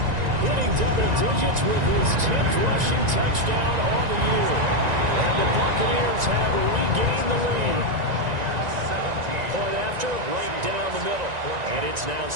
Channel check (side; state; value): left; late; 1.9 ms